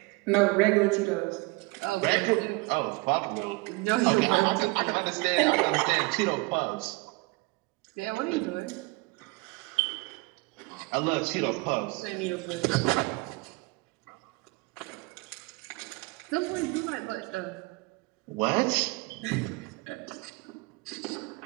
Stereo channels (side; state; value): left; quieter; 25.2 dB